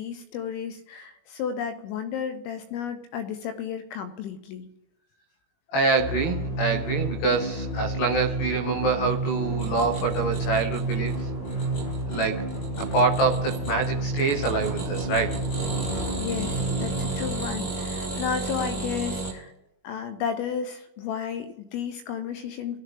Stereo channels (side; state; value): right; late; 21 ms